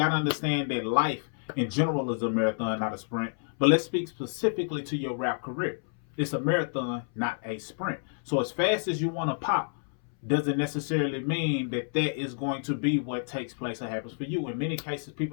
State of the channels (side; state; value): right; silent; 58 dB below the other